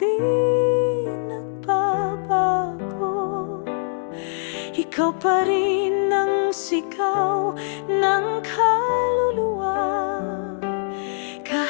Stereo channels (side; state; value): right; silent; digital silence